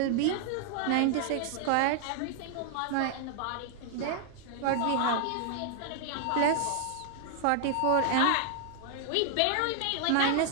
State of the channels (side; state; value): both; different; correlation 0.00